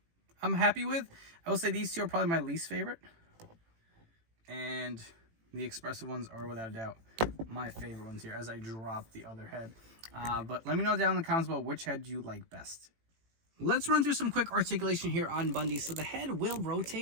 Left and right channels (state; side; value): late; left; 18 ms